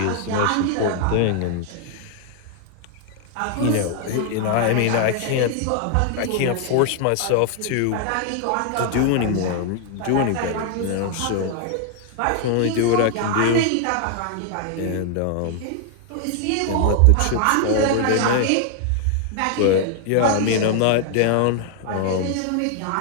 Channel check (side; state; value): both; different; correlation 0.00